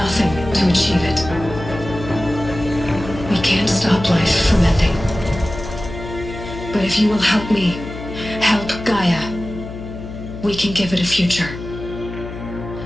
to achieve it. We can't stop life from ending. But if you will help me, help Gaia, we can give it a future.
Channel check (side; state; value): left; noise; hum, 10 dB below the sound